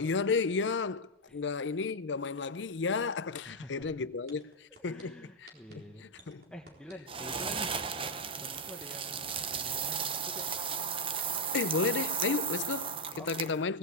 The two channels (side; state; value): both; normal; correlation 0.00